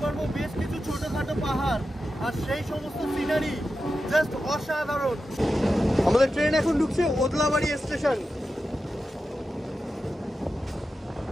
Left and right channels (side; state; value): both; normal; correlation 0.91